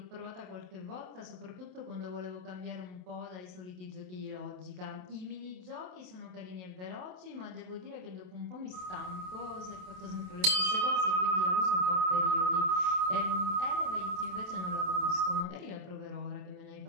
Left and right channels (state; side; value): late; left; 27 ms